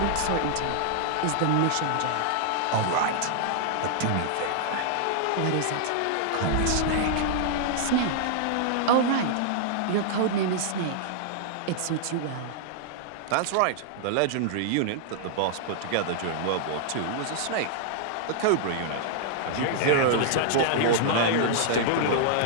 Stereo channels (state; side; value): different; both; correlation -0.01